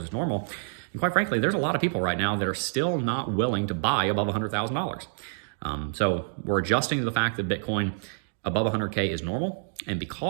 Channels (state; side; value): silent; left; digital silence